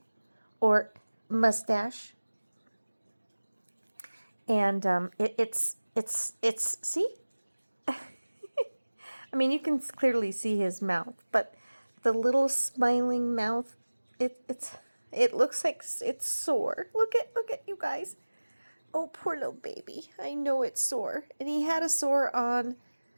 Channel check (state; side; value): inverted; both; correlation -1.00